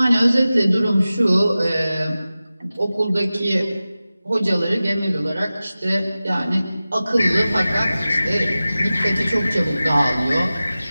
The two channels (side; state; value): both; inverted; correlation -0.95